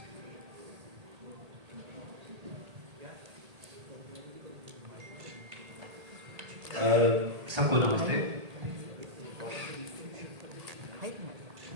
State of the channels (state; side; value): late; left; 1.8 ms